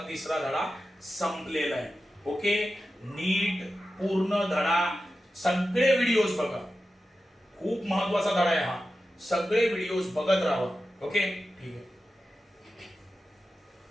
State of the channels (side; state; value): both; normal; correlation 0.92